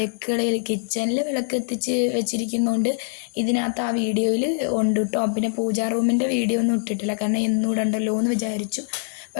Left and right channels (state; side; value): silent; right; 63 dB below the other